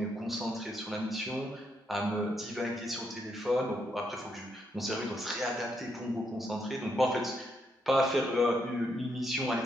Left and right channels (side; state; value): both; normal; correlation 0.78